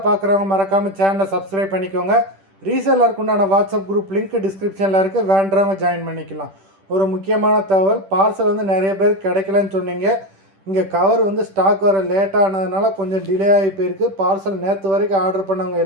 பார்க்குறவங்க மறக்காமல் சேனலை சப்ஸ்கிரைப் பண்ணிக்கோங்க. ரீசெல்லருக்கு உண்டான வாட்ஸ்அப் குரூப் லிங்க் டிஸ்கிரிப்ஷனில் இருக்குது, வேண்டவங்க ஜாயின் பண்ணிக்கலாம். ஒரு முக்கியமான தகவல், பார்சல் வந்து நிறைய பேர் கிடைக்கலன்னு சொன்னீங்க. இங்கே கவர் வந்து ஸ்டாக் வர லேட்டானதுனால கொஞ்சம் டிலே ஆகி போயிருக்கு. பார்சல் நேற்று வரைக்கும் ஆர்டர் பண்ணவங்க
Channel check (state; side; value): late; left; 10 ms